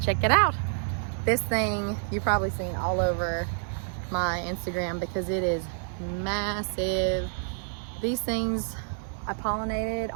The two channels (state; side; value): silent; left; digital silence